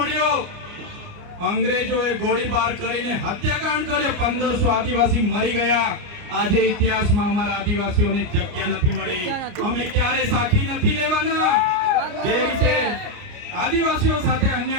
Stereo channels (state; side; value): late; left; 29 ms